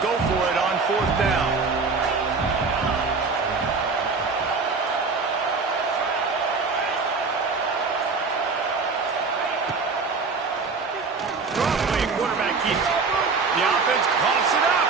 go for it on fourth down. Quarterback keeps it. The offense coughs it up.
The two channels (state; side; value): quieter; left; 4.5 dB